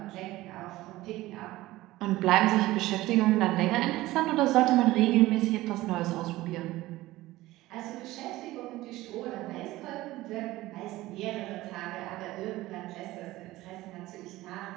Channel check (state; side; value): quieter; left; 17.5 dB